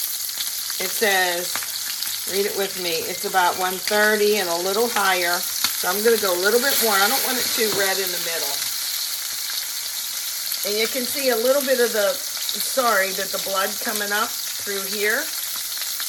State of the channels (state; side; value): identical; both; correlation 1.00